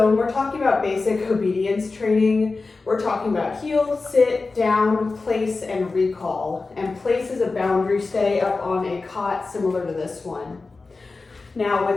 when we're talking about basic obedience training, we're talking about heel, sit, down, place, and recall. And place is a boundary stay up on a cot similar to this one. Now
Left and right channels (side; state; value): right; quieter; 3.8 dB